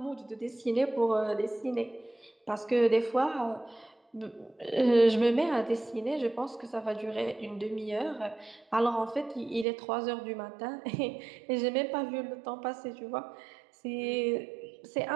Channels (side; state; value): left; drops out; at 9.7 s